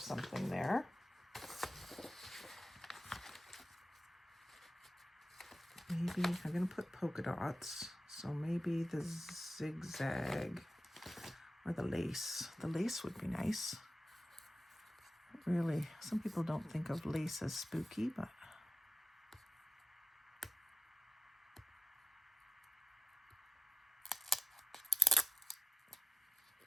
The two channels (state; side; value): normal; both; correlation 0.95